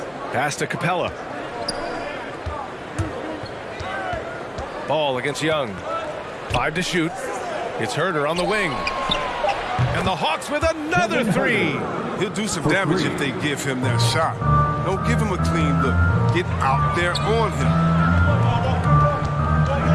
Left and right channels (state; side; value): identical; both; correlation 1.00